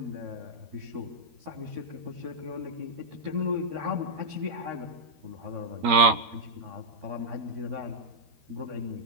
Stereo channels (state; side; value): late; left; 13 ms